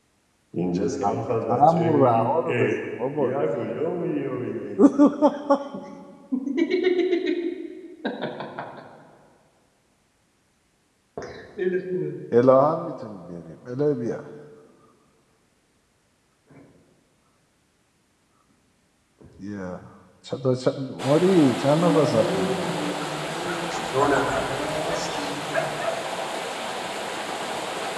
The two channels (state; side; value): identical; both; correlation 1.00